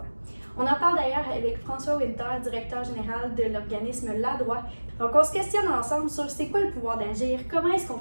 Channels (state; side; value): inverted; both; correlation -1.00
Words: On en parle d'ailleurs avec François Winter, directeur général de l'organisme La Droit. Donc, on se questionne ensemble sur c'est quoi le pouvoir d'agir, comment est-ce qu'on